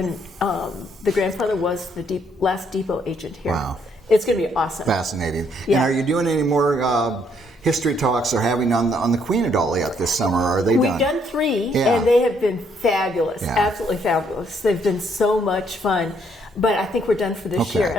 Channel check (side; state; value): both; normal; correlation 0.70